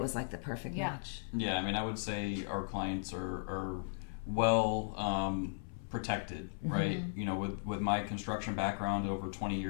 perfect match. Yeah, I mean, I would say our clients are well protected, right? With my construction background, over 20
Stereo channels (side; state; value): right; silent; 53 dB below the other